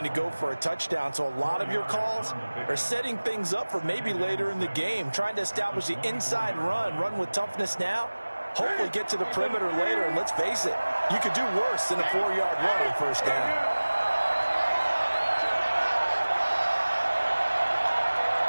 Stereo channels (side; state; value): both; inverted; correlation -1.00